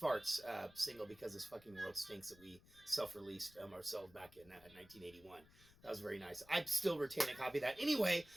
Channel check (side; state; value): left; noise; rumble, 24 dB below the sound